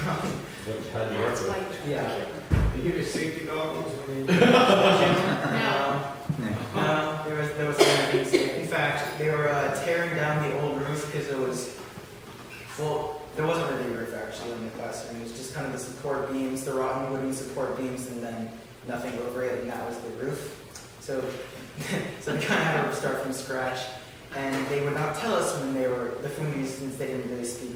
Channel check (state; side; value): identical; both; correlation 1.00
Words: funny. Yeah. Did you get safety goggles when you? No. There was something safe. In fact, they were tearing down the old roof because it was, well, there wasn't really a roof actually in the classroom. It was just kind of the support beams, the rotten wooden support beams, and then nothing over it, and that was the roof. So they kind of had to start from scratch. And they would not tell us when they were, the Fundis, since they didn't really